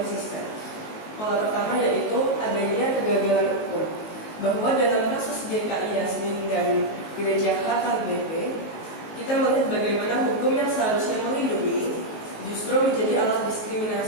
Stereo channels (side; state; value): right; late; 19 ms